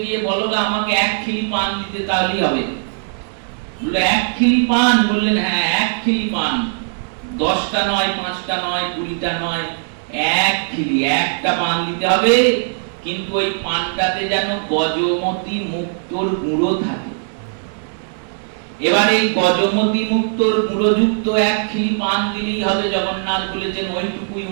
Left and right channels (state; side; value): silent; left; digital silence